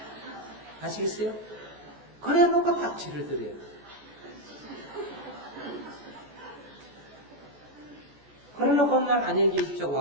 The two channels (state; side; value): late; left; 14 ms